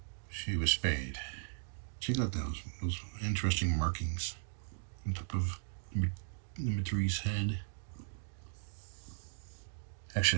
she was spayed. Check out those interesting markings on top of number 3's head.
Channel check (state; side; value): silent; left; digital silence